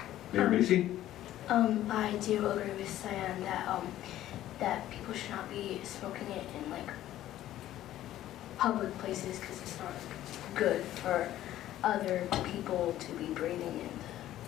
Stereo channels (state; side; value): quieter; right; 13.4 dB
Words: Mayor Macy? I do agree with Cyan that people should not be smoking it in public places because it's not good for other people to be breathing in